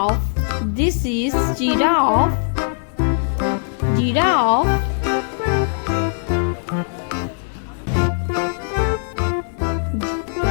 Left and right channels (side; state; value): right; silent; digital silence